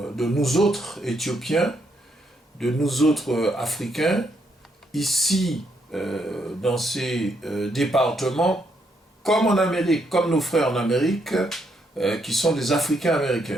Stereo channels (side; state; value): both; normal; correlation 0.76